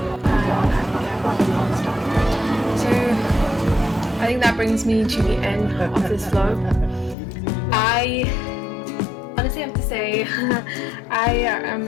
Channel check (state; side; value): drops out; right; at 7.2 s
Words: I can get more things done. So I think that brings me to the end of this vlog. I honestly have to say I